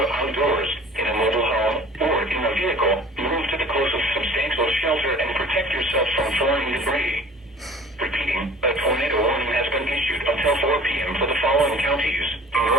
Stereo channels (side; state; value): both; normal; correlation 0.47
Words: outdoors, in a mobile home, or in a vehicle, move to the closest substantial shelter and protect yourself from flying debris. Repeating, a tornado warning has been issued until 4 p.m. for the following counties in